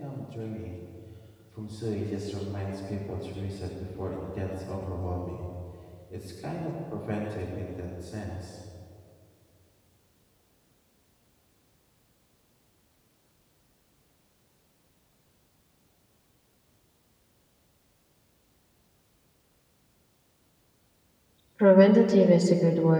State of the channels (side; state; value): both; identical; correlation 1.00